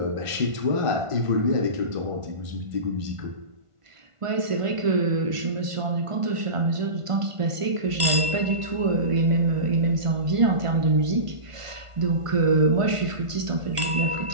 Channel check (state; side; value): late; left; 1.5 ms